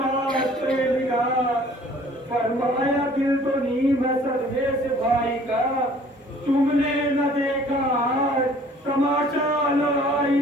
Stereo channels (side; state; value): both; normal; correlation 0.53